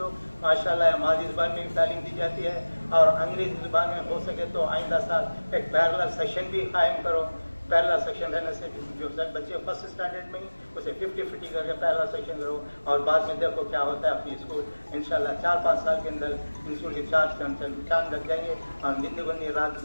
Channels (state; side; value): inverted; both; correlation -1.00